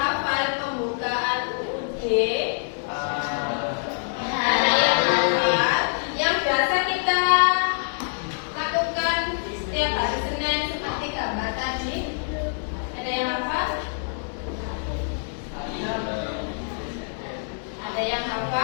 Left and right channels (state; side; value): silent; right; 62 dB below the other